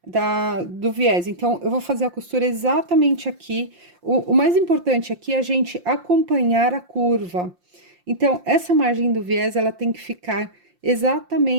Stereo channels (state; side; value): late; left; 5.7 ms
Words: do viés. Então, eu vou fazer a costura exatamente aqui. O mais importante aqui é a gente acompanhar a curva. Então, essa margem do viés, ela tem que ficar